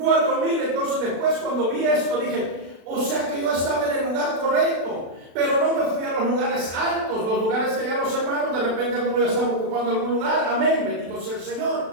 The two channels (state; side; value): late; left; 36 ms